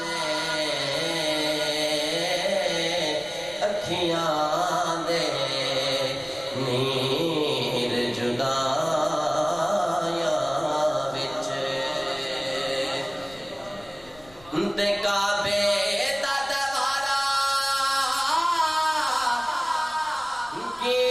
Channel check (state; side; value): noise; left; rumble, 25 dB below the sound